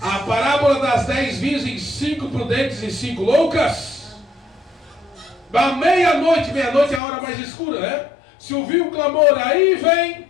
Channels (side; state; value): right; drops out; at 7.0 s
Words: A parábola das 10 virgens, 5 prudentes e 5 loucas. À meia-noite é a hora mais escura, né? Se ouviu o clamor, aí vem